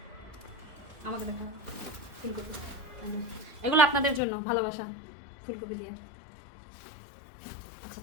আমাকে দেখা ফুলকপি, এগুলো আপনাদের জন্য ভালোবাসা, ফুলকপি দিয়ে। আচ্ছা,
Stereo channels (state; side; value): drops out; right; at 4.2 s